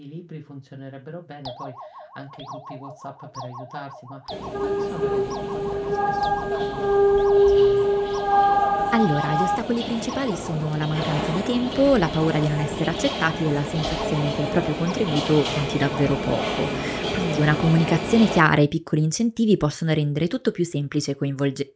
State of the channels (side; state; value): both; identical; correlation 1.00